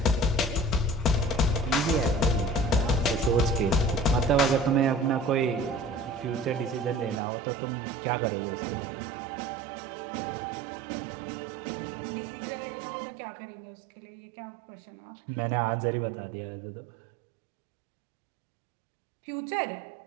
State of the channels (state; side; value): drops out; left; at 7.2 s